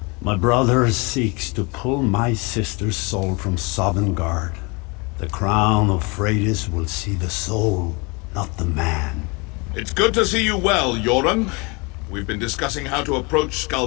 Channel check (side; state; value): right; quieter; 29.0 dB